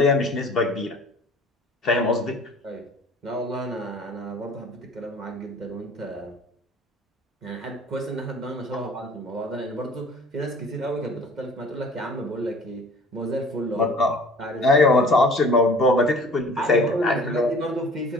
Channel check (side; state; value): both; normal; correlation 0.48